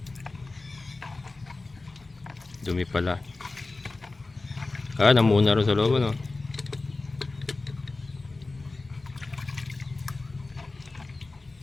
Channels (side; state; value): right; quieter; 3.4 dB